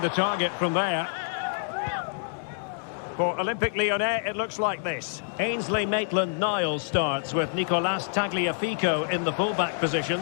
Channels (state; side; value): silent; right; digital silence